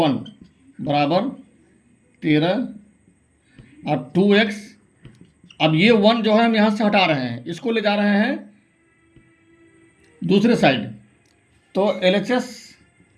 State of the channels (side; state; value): both; identical; correlation 1.00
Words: बराबर 13 और 2x। अब ये 1 जो है हम यहाँ से हटा रहे हैं, इसको ले जा रहे हैं दूसरे साइड। तो LHS